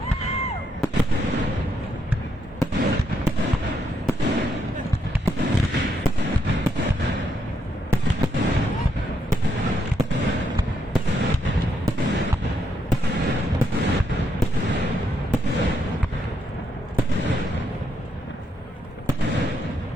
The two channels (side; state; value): both; normal; correlation 0.77